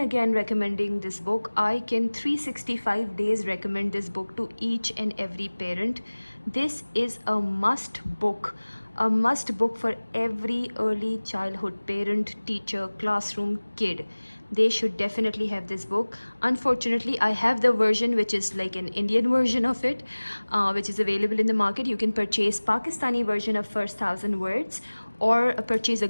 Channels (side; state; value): both; inverted; correlation -1.00